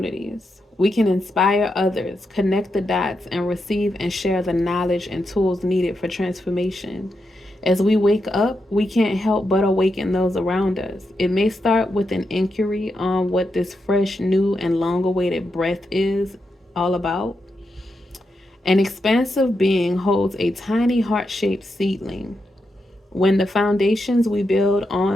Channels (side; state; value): both; normal; correlation 0.85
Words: We can inspire others, connect the dots, and receive and share the knowledge and tools needed for transformation. As we wake up, we can't help but awaken those around us. It may start with an inquiry on what this fresh, new, and long awaited breath is all about. An expansive being holds a tiny heart shaped seedling. When the foundations we build